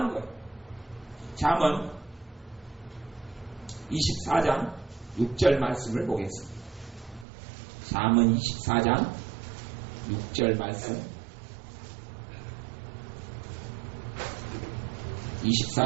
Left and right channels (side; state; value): left; drops out; at 7.2 s